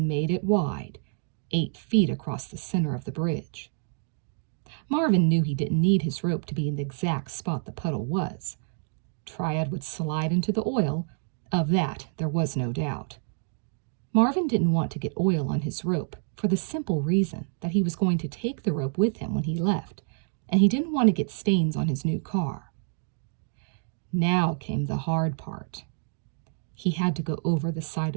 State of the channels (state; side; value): silent; left; digital silence